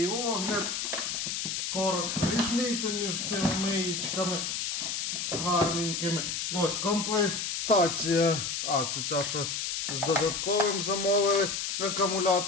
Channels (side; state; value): left; noise; hiss, 2 dB below the sound